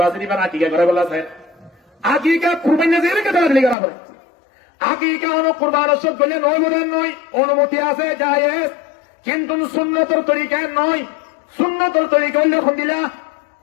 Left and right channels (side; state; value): right; drops out; at 3.8 s